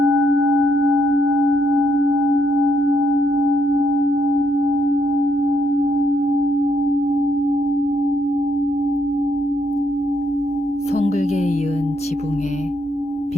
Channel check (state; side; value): normal; both; correlation 0.73